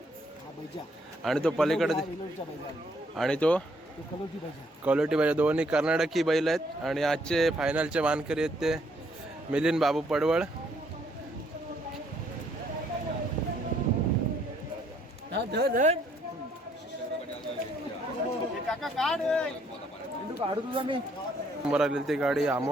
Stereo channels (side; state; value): both; normal; correlation 0.68